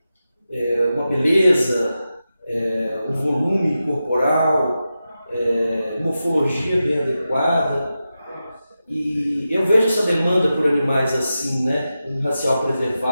uma beleza, um volume corporal, morfologia bem adequada. E eu vejo essa demanda por animais assim, né, um racial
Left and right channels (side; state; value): both; inverted; correlation -0.91